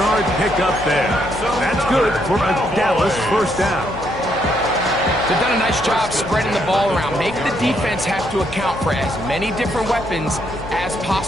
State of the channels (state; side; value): noise; left; hum, 12 dB below the sound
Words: pickup there. That's good for a Dallas first down. They've done a nice job spreading the ball around. Make the defense have to account for as many different weapons as